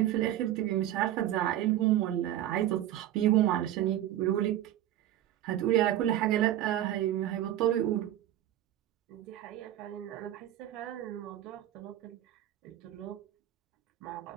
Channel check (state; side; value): quieter; left; 12.8 dB